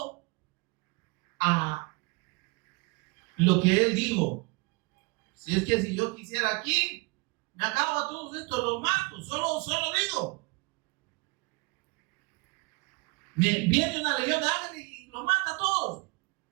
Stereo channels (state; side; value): quieter; left; 27.6 dB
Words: a lo que Él dijo. Si es que si yo quisiera aquí, me acabo a todos estos, los mato, solo digo. Viene una legión de ángeles y los mata a todos.